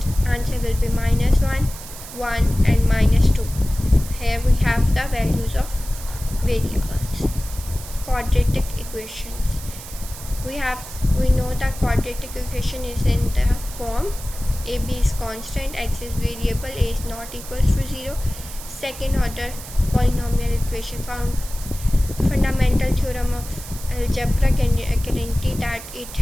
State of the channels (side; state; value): right; noise; hiss, 13 dB below the sound